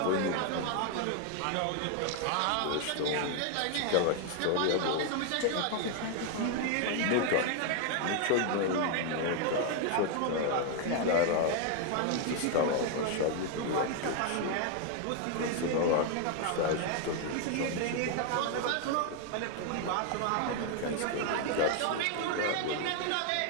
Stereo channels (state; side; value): different; both; correlation 0.00